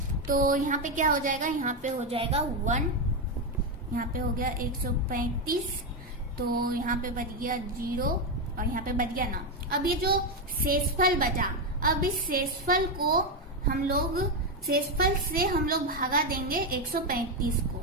तो यहाँ पे क्या हो जाएगा, यहाँ पे हो जाएगा 1, यहाँ पे हो गया 135, तो यहाँ पे बच गया 0 और यहाँ पे बच गया 9। अब ये जो शेषफल बचा, अब इस शेषफल को हम लोग, शेषफल से हम लोग भागा देंगे 135 को,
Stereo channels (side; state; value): both; normal; correlation 0.07